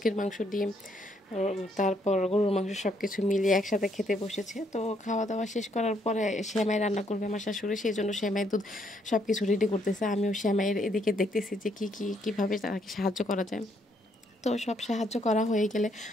মাংস, ডিম, তারপর গরুর মাংস সব কিছু মিলিয়ে একসাথে খেতে বসেছে। তো খাওয়া দাওয়া শেষ করার পরে সেমাই রান্না করবে আমার শাশুড়ি, সেই জন্য সেমাই দুধ সব কিছু রেডি করতেছে। আমিও সেমাইয়ের এদিকে দেখতেছি যে কীভাবে তাকে সাহায্য করা যায়। তো সব সাহায্য করা হয়ে গেলে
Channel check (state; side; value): normal; both; correlation 0.71